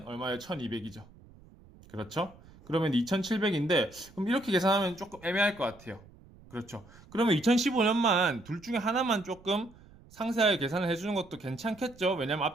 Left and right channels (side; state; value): right; noise; rumble, 23 dB below the sound